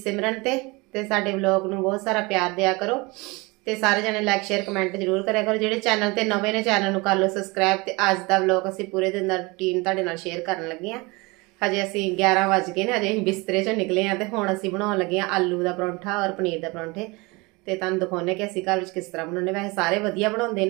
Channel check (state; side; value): quieter; left; 25.4 dB